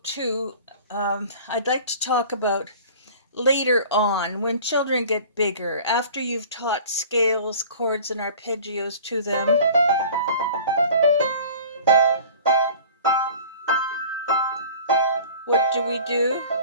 2, I'd like to talk about later on when children get bigger, after you've taught scales, chords, and arpeggios to them. What do we do?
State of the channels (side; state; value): both; inverted; correlation -0.44